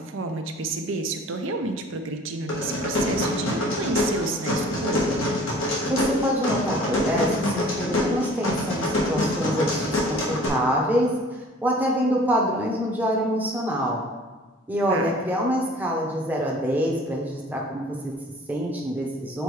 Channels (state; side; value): normal; both; correlation 0.50